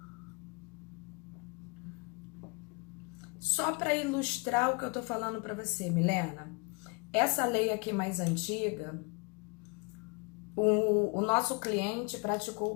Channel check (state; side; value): quieter; right; 30.1 dB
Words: Só para ilustrar o que eu tô falando para você, Milena, essa lei aqui mais antiga, o nosso cliente praticou o